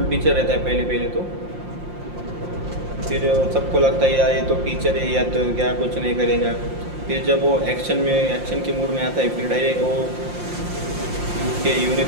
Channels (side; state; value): left; late; 5.7 ms